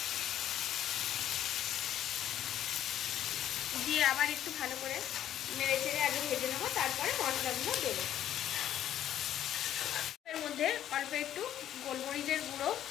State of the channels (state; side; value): quieter; right; 11.3 dB